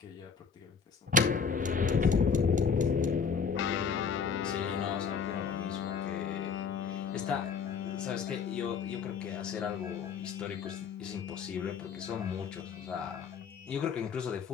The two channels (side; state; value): right; quieter; 5.9 dB